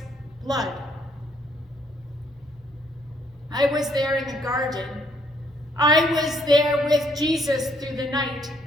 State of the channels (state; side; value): normal; both; correlation 0.68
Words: blood. I was there in the garden. I was there with Jesus through the night.